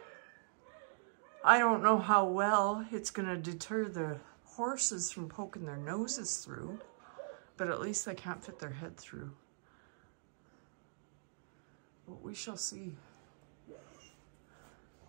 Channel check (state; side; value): silent; left; digital silence